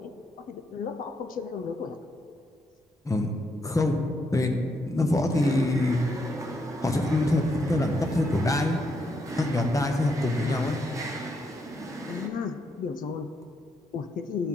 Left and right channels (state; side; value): normal; both; correlation 0.78